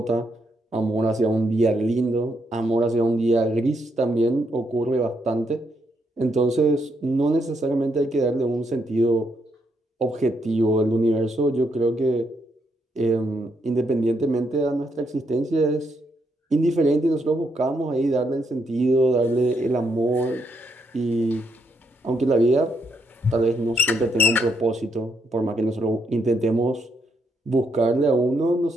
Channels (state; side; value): normal; both; correlation 0.77